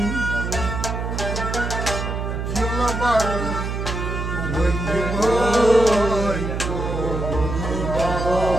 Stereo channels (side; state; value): right; noise; hum, 3 dB below the sound